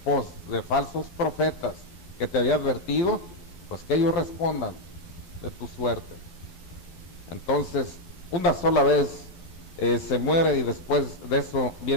de falsos profetas que te había advertido, pues que ellos respondan de tu suerte. Entonces, una sola vez se muere y después de eso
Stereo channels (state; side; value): late; right; 12 ms